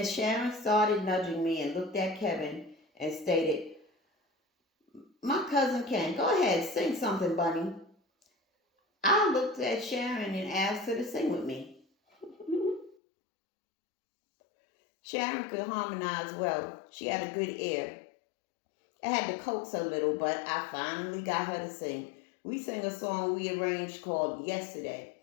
Sharon started nudging me and looked at Kevin and stated, "My cousin Ken, go ahead, sing something, Bunny." I looked at Sharon and asked her to sing with me. Sharon could harmonize well. She had a good ear. I had to coax her a little, but I finally got her to sing. We sang a song we arranged called "Yesterday."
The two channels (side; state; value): right; drops out; at 13.0 s